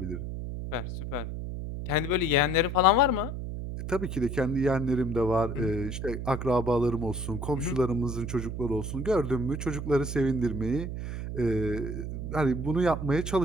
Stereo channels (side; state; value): right; noise; hum, 5 dB below the sound